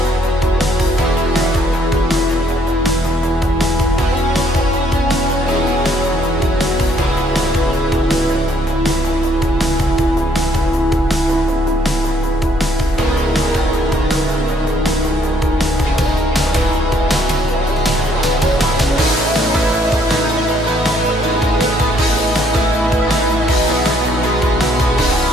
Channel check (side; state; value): both; normal; correlation 0.67